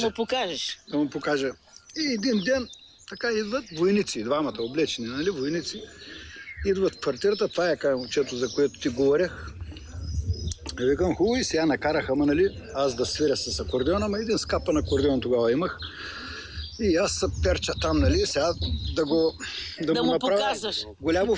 му покажеш. Да му покажа. И един ден така идват войници, двамата облечени, нали, войници. Идват в квартирата, това е момчето, за което ти говорех. И викам, хубаво, и сега накараха, нали, аз да свиря с акордеона, ама един скапан акордеон тогава имах. И аз се перча там, нали, сега да му направя показваш. Голямо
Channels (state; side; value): identical; both; correlation 1.00